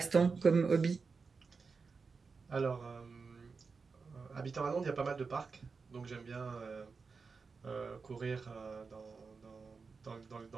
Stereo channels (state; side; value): quieter; left; 4.8 dB